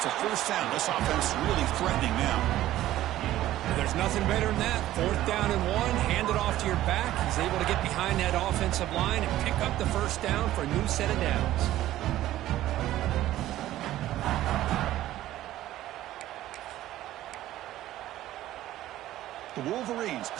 a first down. This offense really threatening now. There's nothing better than that. 4th down and 1. Hand it off to your back. He's able to get behind that offensive line and pick up the first down for a new set of downs. The Wolverines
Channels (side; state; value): left; quieter; 14.3 dB